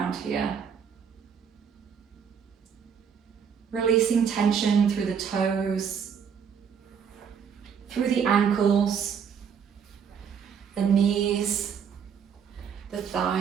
here. Releasing tension through the toes, through the ankles, the knees, the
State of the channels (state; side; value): quieter; left; 7.1 dB